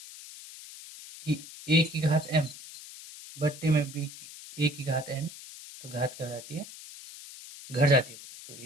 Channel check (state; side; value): noise; left; hiss, 15 dB below the sound